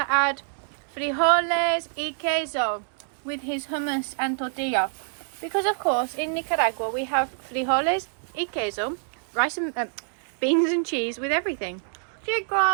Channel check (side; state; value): left; silent; digital silence